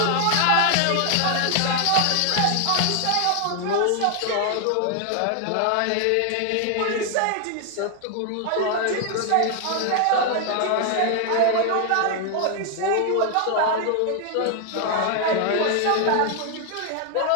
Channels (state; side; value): different; both; correlation 0.00